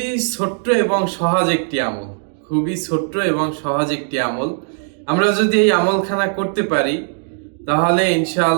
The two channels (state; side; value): silent; left; 56 dB below the other